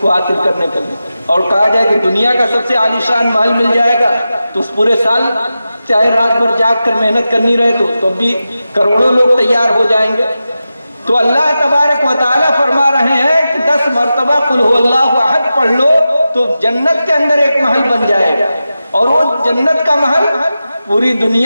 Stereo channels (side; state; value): both; inverted; correlation -0.92